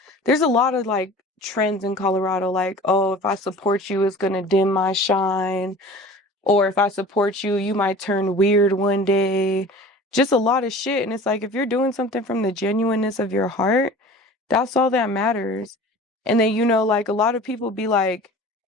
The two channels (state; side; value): normal; both; correlation 0.41